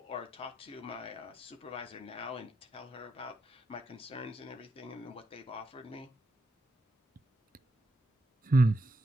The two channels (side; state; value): both; normal; correlation 0.83